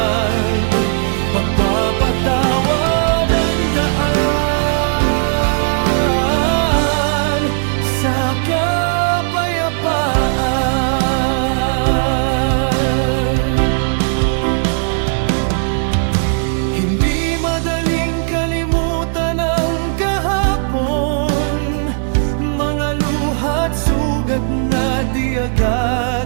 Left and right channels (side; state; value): left; silent; digital silence